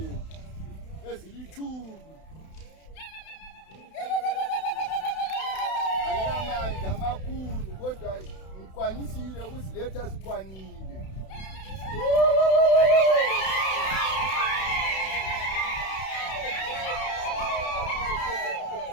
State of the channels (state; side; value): late; right; 31 ms